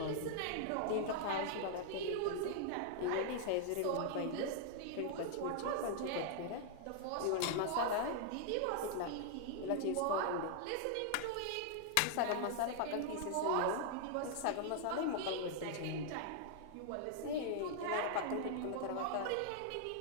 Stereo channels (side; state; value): both; different; correlation 0.00